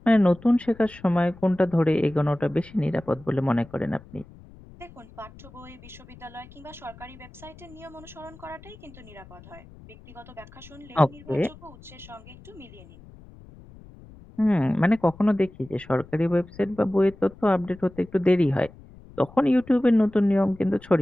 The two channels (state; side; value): noise; left; rumble, 21 dB below the sound